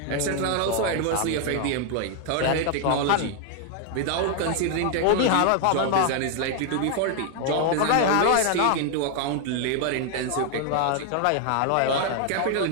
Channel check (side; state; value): both; different; correlation 0.00